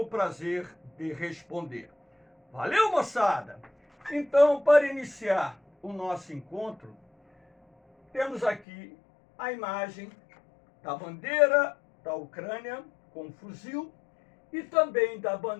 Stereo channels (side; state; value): right; drops out; at 8.7 s